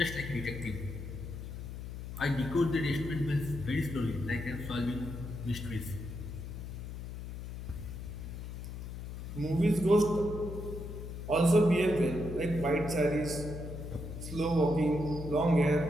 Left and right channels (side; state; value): left; noise; hum, 8 dB below the sound